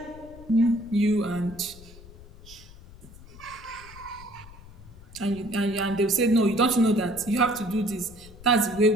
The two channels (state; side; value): noise; left; rumble, 19 dB below the sound